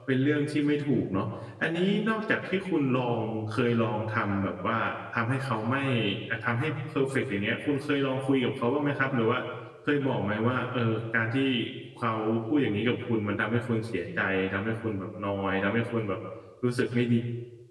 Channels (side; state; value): both; identical; correlation 1.00